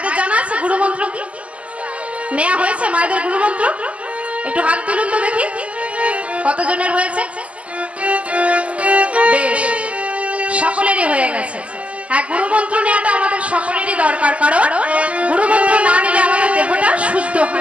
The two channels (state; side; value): late; left; 0.064 ms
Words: জানা আছে গুরুমন্ত্র কি? নেওয়া হয়েছে মায়েদের গুরুমন্ত্র? একটু হাত তুলুন তো দেখি, কতজনের হয়েছে? বেশ, সকলেরই হয়ে গেছে। হ্যাঁ, গুরুমন্ত্র নেওয়াটা আমাদের সকলেরই দরকার, কারণ গুরুমন্ত্র না নিলে আমাদের দেহটা শুদ্ধ